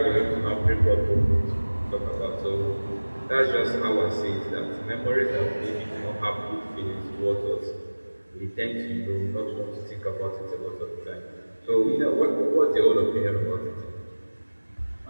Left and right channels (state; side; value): inverted; both; correlation -1.00